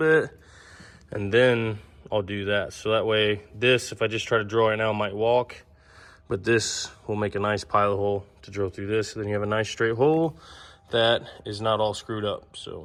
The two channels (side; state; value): both; identical; correlation 1.00